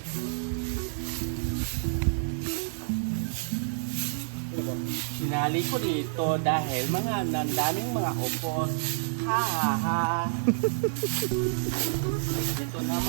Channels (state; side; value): silent; left; digital silence